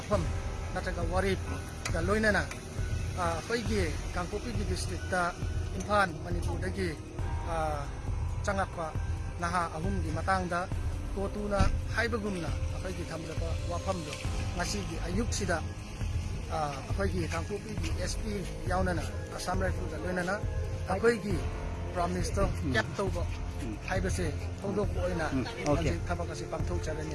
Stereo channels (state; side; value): identical; both; correlation 1.00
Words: Nataga Warip, Galoinana, Faigi, Kangkupi district, Impan, Manipudagi, Changakwa, Naha Ahumgi Matangda, Kotuna, Haibagumna, Faigi Kamzaba Wapamdo, Ngasigi Ayuksida. अखोई कांगकुपी की SP यावना Assam rifle लोनना अखोई promise तो cap तौब हाइबसे थोदोक ओइना थबक असे पांथोक चरनी